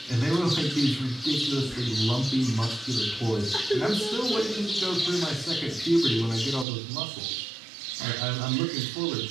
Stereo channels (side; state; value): left; drops out; at 6.7 s